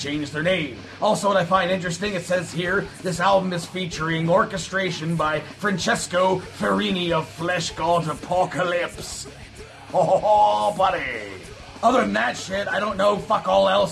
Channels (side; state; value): both; identical; correlation 1.00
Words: their name. Also, what I find interesting, it says here, this album is featuring orchestration by Francesco Ferrini of Flesh God Apocalypse. Oh, buddy. Other than that shit, I don't know fuck all